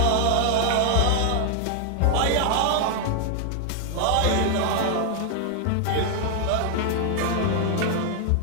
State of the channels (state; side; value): different; both; correlation 0.00